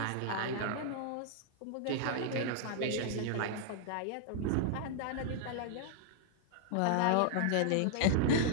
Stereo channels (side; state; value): both; different; correlation -0.01